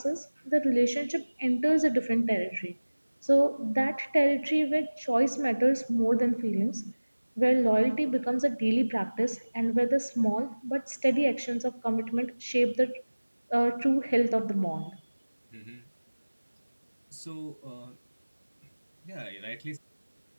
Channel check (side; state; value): both; inverted; correlation -1.00